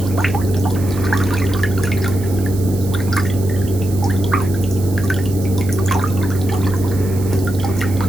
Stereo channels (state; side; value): noise; right; hiss, 16 dB below the sound